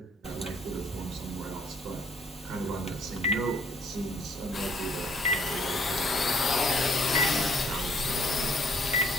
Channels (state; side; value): normal; both; correlation 0.62